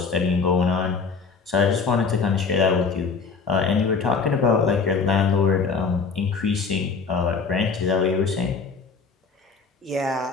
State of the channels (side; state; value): right; quieter; 5.0 dB